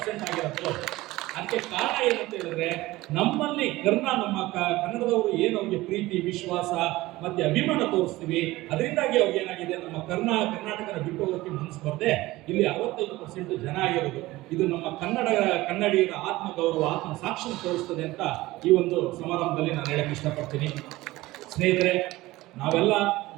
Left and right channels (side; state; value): left; quieter; 18.6 dB